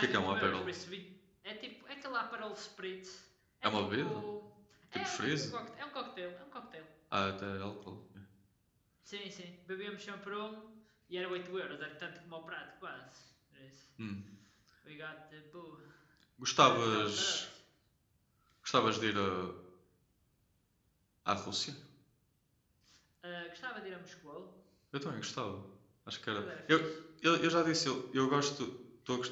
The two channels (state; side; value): identical; both; correlation 1.00